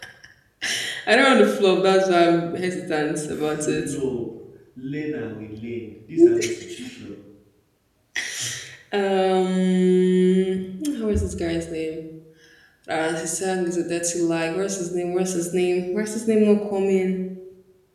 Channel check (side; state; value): both; identical; correlation 1.00